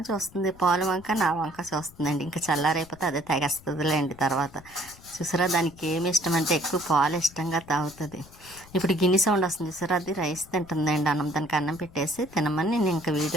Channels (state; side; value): noise; left; rumble, 22 dB below the sound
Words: చూస్తుంది, పాలు వంక నా వంక చూస్తుందండి. ఇంకా చల్లారైపోతే అదే తాగేస్తుందిలేండి తర్వాత. చూసారా దానికి ఏమి ఇష్టం అంటే ఎక్కువ పాలు ఇష్టంగా తాగుతుంది. ఇప్పుడు గిన్నె సౌండ్ వస్తుంది చూసారా, అది రైస్ తింటుందండి. దానికి అన్నం పెట్టేసి తినమని నేను ఇంకా